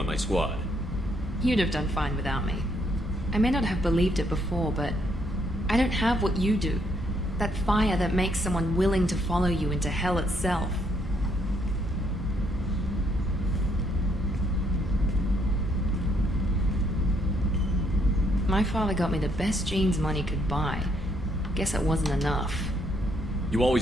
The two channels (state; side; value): normal; both; correlation 0.72